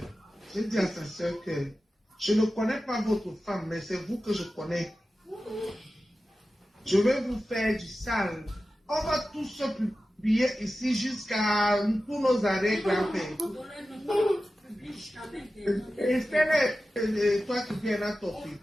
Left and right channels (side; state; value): both; normal; correlation 0.94